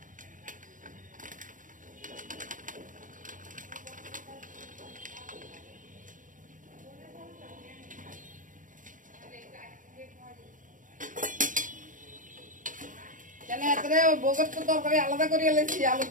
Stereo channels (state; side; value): late; left; 0.38 ms